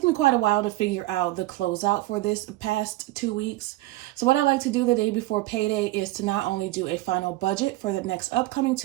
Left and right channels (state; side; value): quieter; left; 18.0 dB